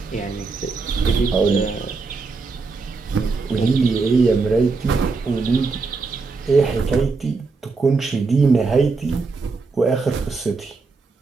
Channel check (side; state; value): left; quieter; 4.2 dB